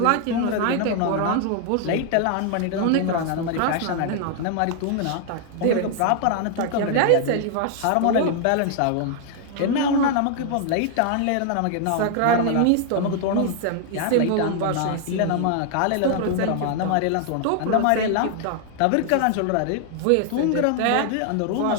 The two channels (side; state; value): both; different; correlation 0.00